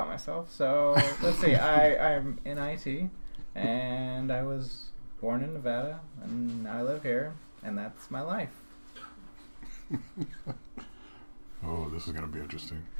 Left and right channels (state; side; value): inverted; both; correlation -1.00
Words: myself, so let's see. I'm in IT, and I was born in Nevada, and I live here, and that's my life. Oh, this is going to be interesting.